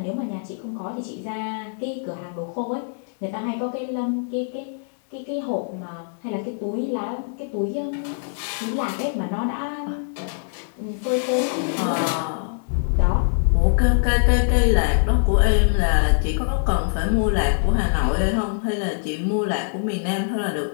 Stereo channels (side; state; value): right; silent; digital silence